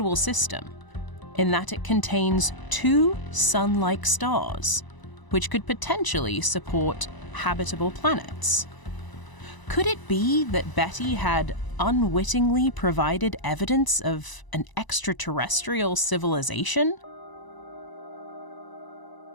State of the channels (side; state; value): right; late; 1.0 ms